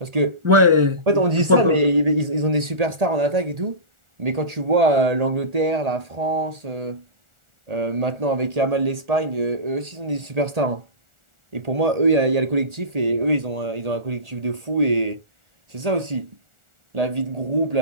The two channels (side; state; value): left; late; 1.4 ms